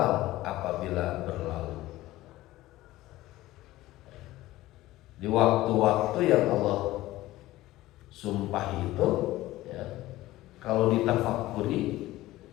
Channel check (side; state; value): right; quieter; 16.8 dB